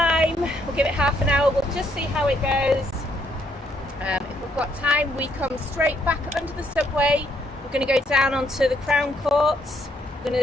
we'll give it half an hour. We'll just see how it goes. If we've got time, we come straight back under the subway. We're going to go down onto the Crown Courts. We're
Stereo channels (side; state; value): both; normal; correlation 0.72